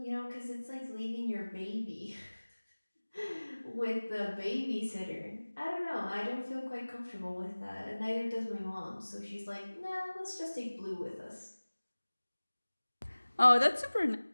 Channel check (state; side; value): inverted; both; correlation -1.00